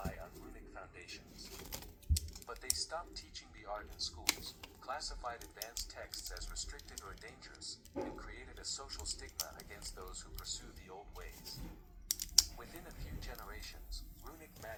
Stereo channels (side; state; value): both; identical; correlation 1.00